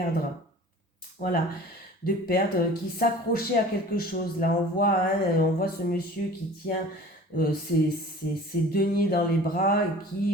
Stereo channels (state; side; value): normal; both; correlation 0.44